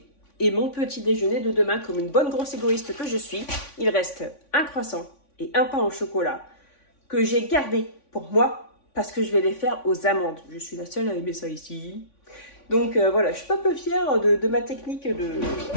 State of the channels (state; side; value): late; right; 3.5 ms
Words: et mon petit déjeuner de demain comme une bonne grosse égoïste que je suis. Il reste un croissant et un pain au chocolat que j'ai gardé pour moi parce que je vais les faire aux amandes. Je suis la seule à aimer ça ici. Donc voilà, je suis pas peu fière de ma technique de